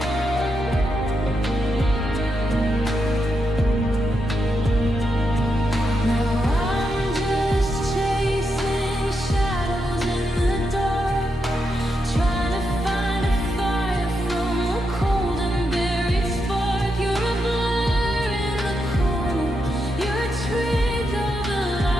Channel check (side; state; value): both; normal; correlation 0.84